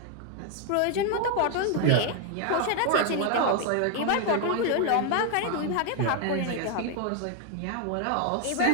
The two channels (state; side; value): different; both; correlation 0.01